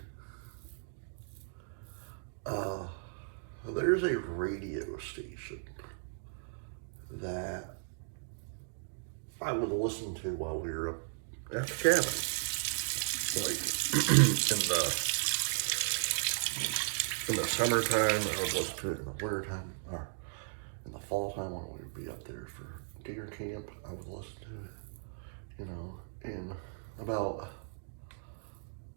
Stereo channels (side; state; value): left; silent; digital silence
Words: there's a radio station that I would listen to while we were up at the cabin. Like, in the summertime, I would listen to it in the wintertime, or in the fall time when we would be up there for deer camp, I would listen to it, you know, and about